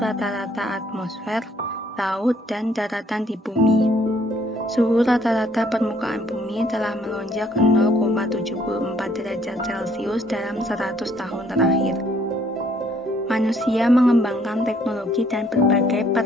atmosfer, laut, dan daratan di bumi. Suhu rata-rata permukaan bumi telah melonjak 0,74 derajat Celcius dalam 100 tahun terakhir. Manusia mengembangkan teknologi dan berbagai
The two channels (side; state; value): both; normal; correlation 0.64